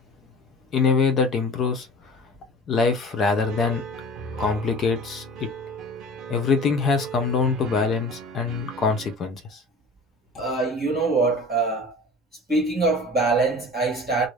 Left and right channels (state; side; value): normal; both; correlation 0.40